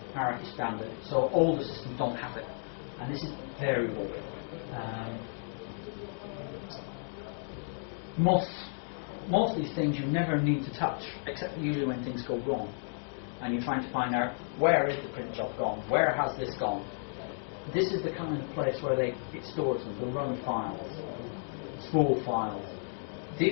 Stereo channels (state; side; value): silent; right; digital silence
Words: hierarchy standard, so older systems don't have it. And this is variable. Most of these things you never need to touch, except for usually when things go wrong. And you're trying to find out, where is the print job gone? Where has this gone? This is the kind of place where it stores them, the run files, spool files.